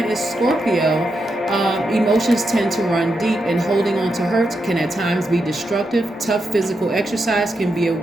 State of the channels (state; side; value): normal; both; correlation 0.85